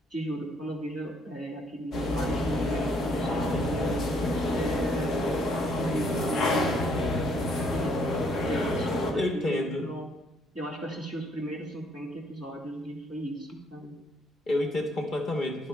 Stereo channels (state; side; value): normal; both; correlation 0.68